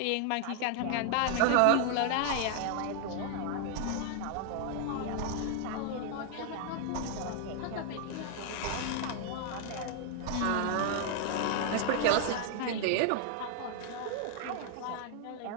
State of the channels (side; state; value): both; different; correlation 0.00